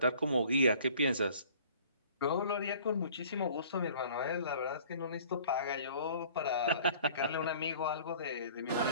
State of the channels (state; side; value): inverted; both; correlation -0.51